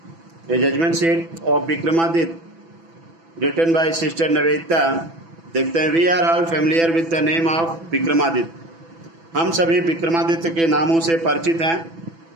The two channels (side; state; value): left; late; 6.0 ms